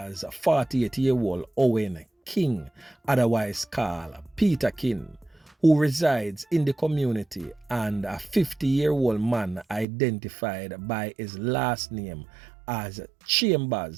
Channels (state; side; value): drops out; left; at 9.9 s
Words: 48-year-old Owen King, otherwise called Peterkin, who resides in the community, and a 50-year-old man identified by his last name as